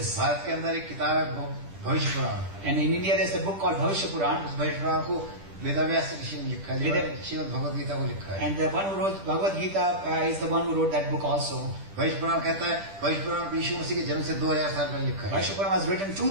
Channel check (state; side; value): late; left; 10 ms